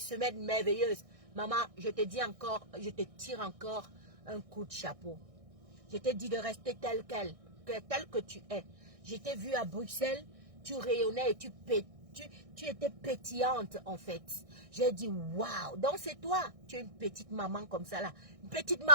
merveilleuse. Maman, je te dis encore, je te tire encore un coup de chapeau. Je t'ai dit de rester tel que tu es. Je t'ai vu à Bruxelles, tu rayonnais et tu étais pétillante en fait. J'ai dit waouh, donc c'est toi, tu es une petite maman comme ça là. Une petite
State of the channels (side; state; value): left; late; 1.6 ms